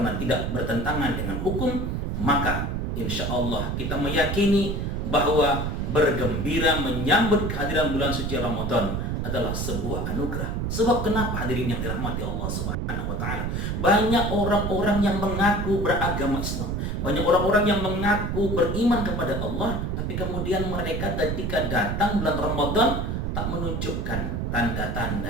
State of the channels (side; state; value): right; noise; rumble, 1 dB below the sound